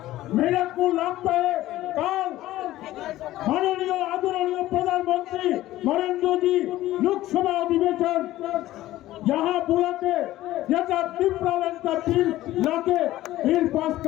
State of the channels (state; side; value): quieter; right; 15.4 dB